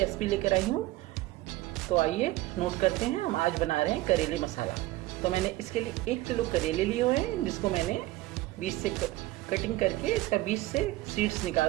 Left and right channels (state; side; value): quieter; left; 18.0 dB